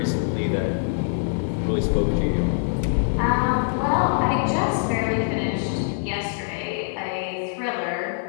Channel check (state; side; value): silent; right; digital silence